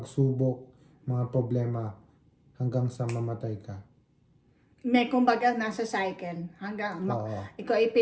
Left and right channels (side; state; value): both; identical; correlation 1.00